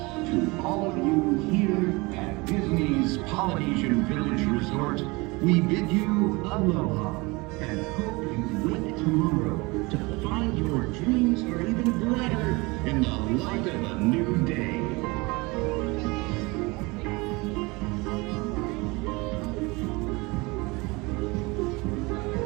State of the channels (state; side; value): quieter; left; 25.0 dB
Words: to all of you here at Disney's Polynesian Village Resort, we bid you aloha and hope you wake tomorrow to find your dreams are even brighter in the light of a new day.